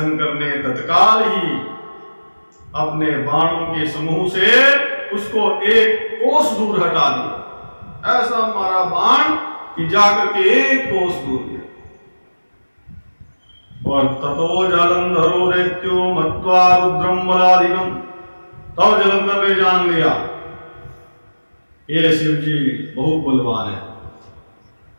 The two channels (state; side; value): inverted; both; correlation -1.00